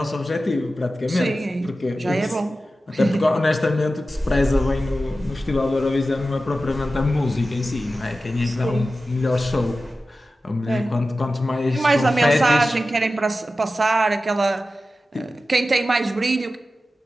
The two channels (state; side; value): normal; both; correlation 0.94